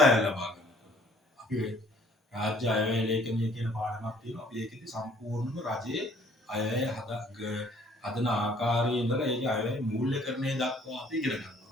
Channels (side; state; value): both; normal; correlation 0.58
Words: ලබා ගන්න. අපි රාජ්‍ය අයවැය ලේඛනය කියන පාඩමක් තියෙනවා. අපි ඒකෙදි සම්පූර්ණම රජයේ අයවැය හදන ආකාරයේ ඉඳලා ඒකේ අයවැය මූල්‍යකරණය දක්වා අපි ඉගෙන ගන්නවා.